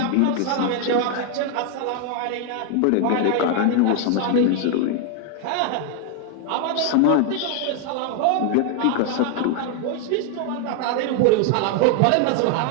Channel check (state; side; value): different; both; correlation 0.00